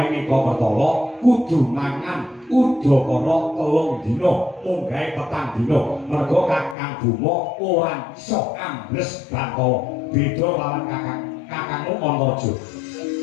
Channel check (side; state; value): right; drops out; at 6.8 s